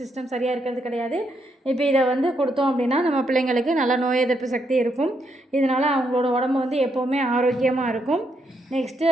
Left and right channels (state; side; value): normal; both; correlation 0.78